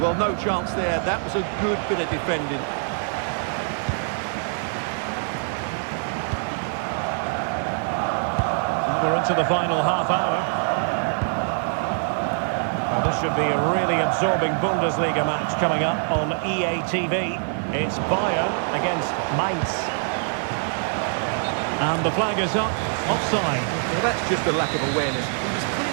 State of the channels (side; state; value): left; silent; 63 dB below the other